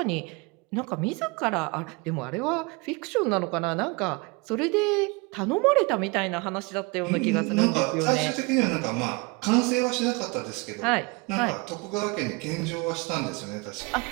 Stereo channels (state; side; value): quieter; left; 27.8 dB